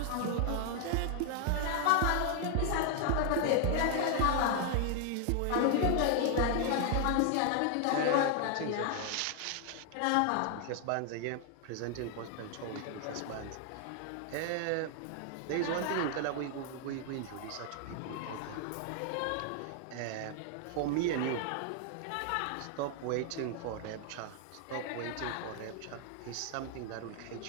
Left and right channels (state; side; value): different; both; correlation 0.00